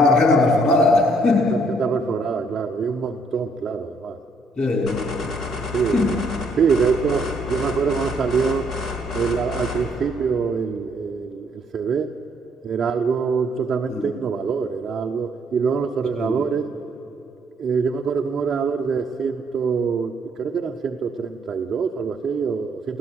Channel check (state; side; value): normal; both; correlation 0.69